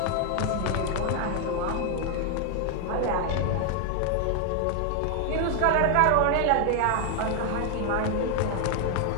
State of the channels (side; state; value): both; different; correlation 0.00